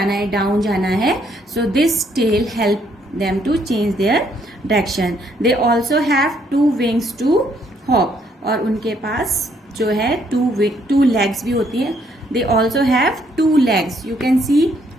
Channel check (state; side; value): normal; both; correlation 0.70